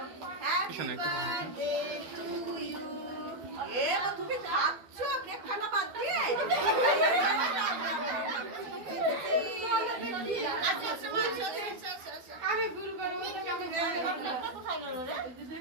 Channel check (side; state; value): left; late; 12 ms